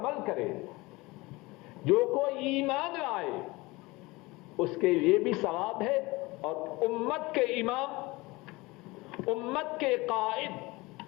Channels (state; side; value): quieter; right; 22.5 dB